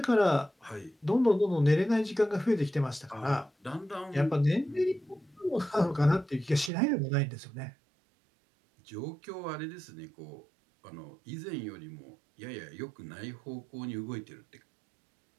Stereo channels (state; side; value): drops out; left; at 6.7 s